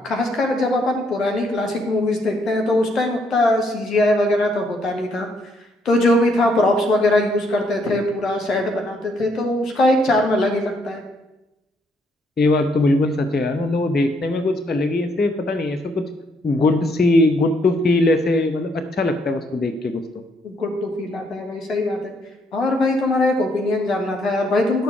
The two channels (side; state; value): both; normal; correlation 0.71